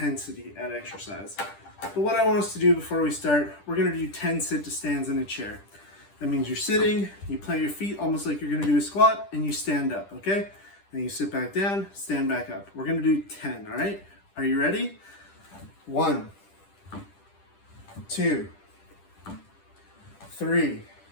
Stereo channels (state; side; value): late; right; 10 ms